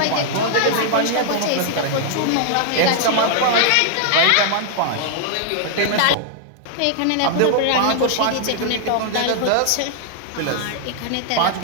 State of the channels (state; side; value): different; both; correlation -0.01